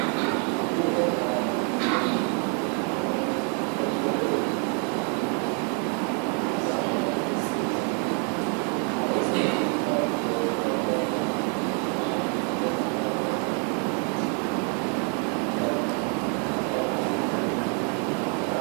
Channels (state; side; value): quieter; left; 39.3 dB